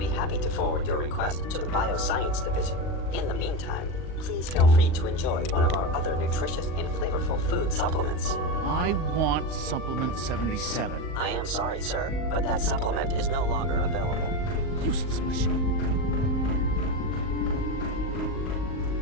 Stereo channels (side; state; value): right; late; 39 ms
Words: happy to forward your request to the Bioscience Division. In the meantime, please feel free to enjoy one of our other nutritious and flavorful food supplements. I want Supplement 77. I am sorry, sir, but that supplement is no longer available. Useless machine.